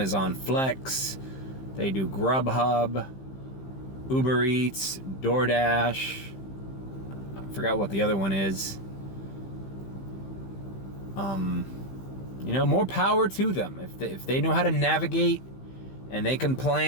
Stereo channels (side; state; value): right; late; 15 ms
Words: Flex. They do Grubhub, Uber Eats, DoorDash. I forgot what the other one is. You know, more power to them. If they know how to navigate and they can